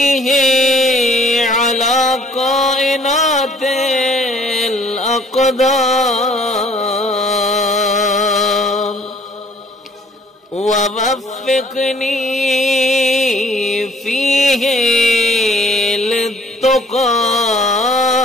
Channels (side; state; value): both; normal; correlation 0.57